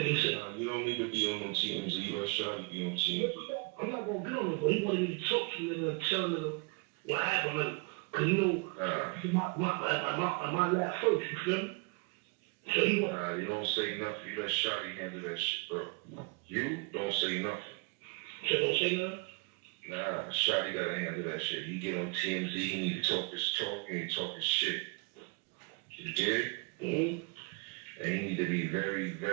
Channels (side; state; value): left; quieter; 30.8 dB